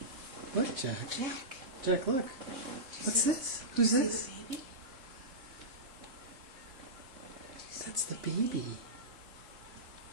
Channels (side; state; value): left; late; 3.7 ms